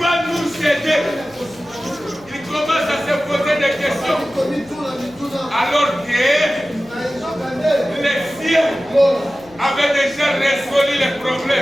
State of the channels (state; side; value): noise; left; hum, 25 dB below the sound